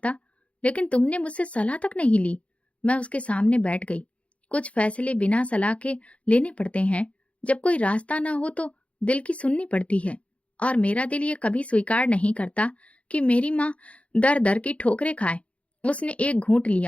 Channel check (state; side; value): late; right; 0.063 ms